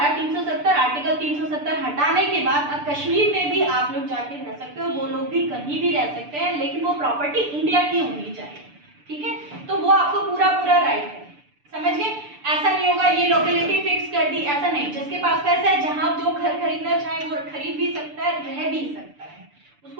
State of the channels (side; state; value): left; late; 6.8 ms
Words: 370 आर्टिकल 370 हटाने के बाद अब कश्मीर में भी आप लोग जाके रह सकते हो, वो लोग भी कहीं भी रह सकते हैं, लेकिन वो प्रॉपर्टी इंडिया की होनी चाहिए, ठीक है। तो वो आपको पूरा पूरा राइट है, समझ गए। ऐसा नहीं होगा ये लोकेलिटी फिक्स कर दी, ऐसा नहीं। जिसके पास पैसा है, जहां जो घर खरीदना चाहे वो खरीद भी सकता है, रह भी सकता है,